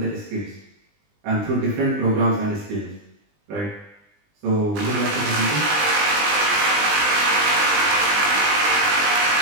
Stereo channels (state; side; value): late; left; 20 ms